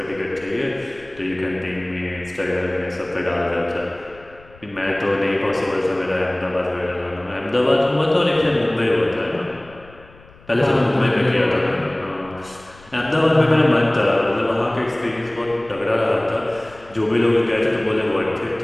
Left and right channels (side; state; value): left; noise; rumble, 24 dB below the sound